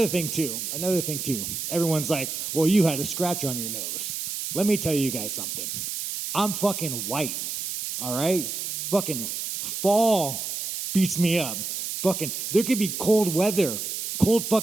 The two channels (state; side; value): noise; right; hiss, 4 dB below the sound